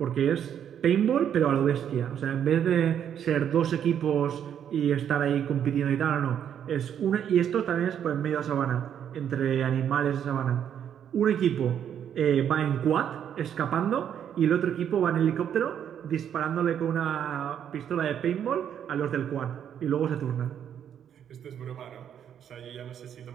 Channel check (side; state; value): left; quieter; 9.1 dB